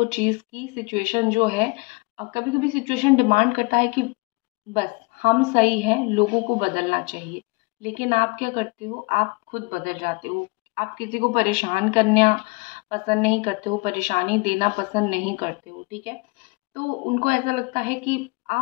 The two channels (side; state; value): right; quieter; 27.9 dB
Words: चीज़ की सिचुएशन जो है, कभी कभी सिचुएशन डिमांड करता है कि बस हम सही हैं, लोगों को बदलना चाहिए। लेकिन आप क्या करते हो, आप खुद बदल जाते हो। आप किसी को परेशान करना पसंद नहीं करते हो, परेशानी देना पसंद नहीं करते हो। ठीक है, तो उनको ऐसा लगता है कि